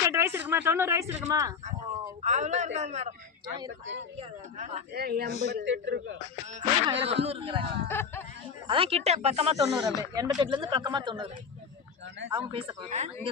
வயசு இருக்குமா? 90 வயசு இருக்குமா? அவ்வளோ இருக்காது மேடம். 88 இருக்கு. அதான் கிட்ட பக்கமா 90. அப்படியே 88ல இருந்து பக்கமா 90. அவங்க பேச போறாங்க. இங்க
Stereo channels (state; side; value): quieter; right; 6.1 dB